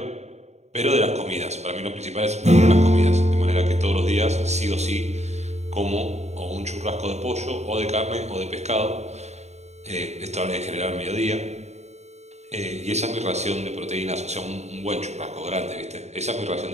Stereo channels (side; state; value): left; late; 0.32 ms